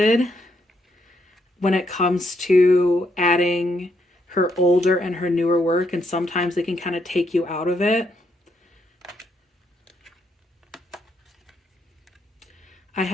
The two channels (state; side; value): normal; both; correlation 0.76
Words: when it comes to adding her older and her newer work, and sometimes they can kind of take you out of it. I